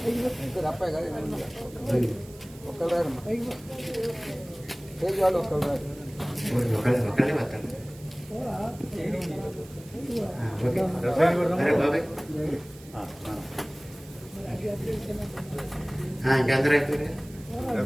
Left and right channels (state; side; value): noise; right; hiss, 22 dB below the sound